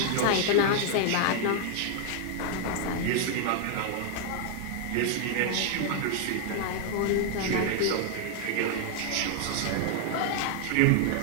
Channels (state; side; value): different; both; correlation 0.00